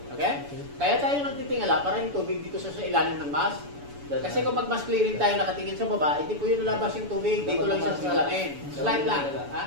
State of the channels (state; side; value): late; left; 7.0 ms